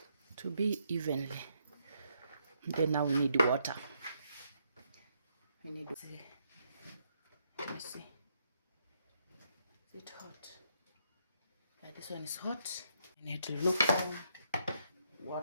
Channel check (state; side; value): inverted; both; correlation -0.76